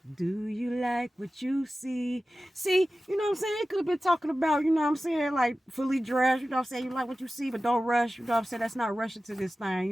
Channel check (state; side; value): normal; both; correlation 0.95